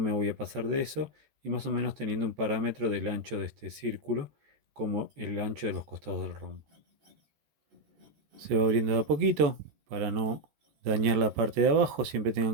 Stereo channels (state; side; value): late; left; 14 ms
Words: voy a pasar de eso, y más o menos teniendo un parámetro del ancho de este círculo como el ancho de los costados del rombo. Se va abriendo de a poquito para no dañar la parte de abajo. Siempre